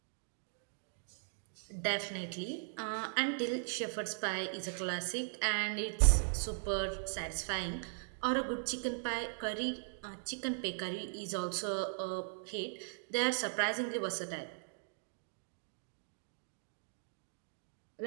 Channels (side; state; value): left; silent; digital silence